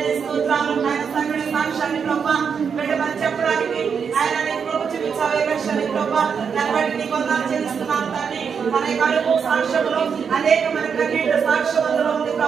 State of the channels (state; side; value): quieter; left; 6.5 dB